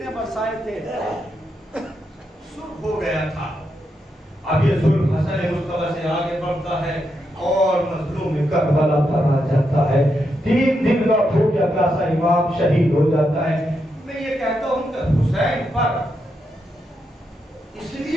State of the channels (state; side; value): normal; both; correlation 0.83